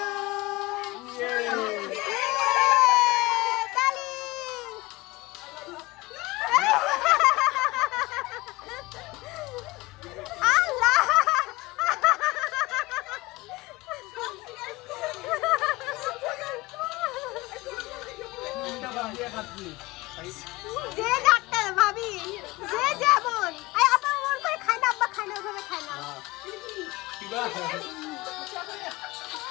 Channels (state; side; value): quieter; right; 21.4 dB